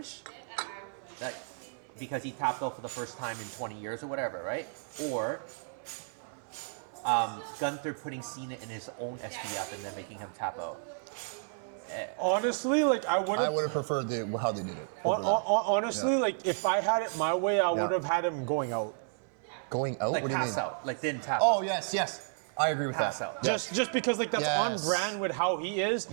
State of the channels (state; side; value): silent; left; 56 dB below the other